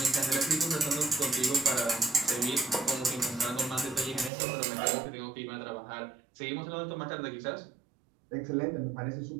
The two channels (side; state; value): left; drops out; at 4.3 s